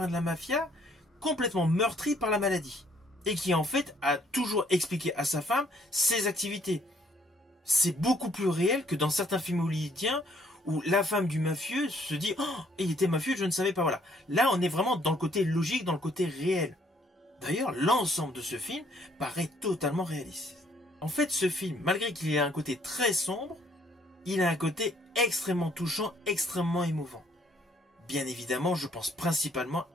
de la mafia complètement meurtri par la maladie et qui en fait a toujours expliqué à sa femme ses activités. C'est beaucoup plus réel que dans certains films hollywoodiens où la femme du mafieux se dit « Oh, il était mafieux, je ne savais pas. » Voilà. Là, on est vraiment dans le côté logique, dans le côté réel. D'ailleurs, l'ensemble de ce film paraît totalement réaliste. En fait, ce film, malgré qu'il ait un côté très sombre, il a un côté extrêmement touchant, extrêmement émouvant. Bien évidemment, je pense principalement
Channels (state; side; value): normal; both; correlation 0.64